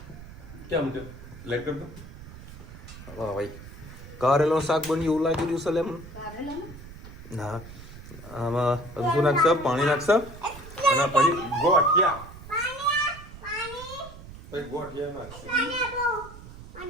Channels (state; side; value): noise; right; rumble, 15 dB below the sound